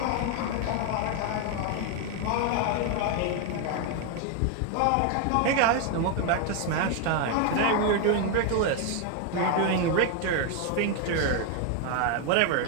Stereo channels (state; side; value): different; both; correlation 0.01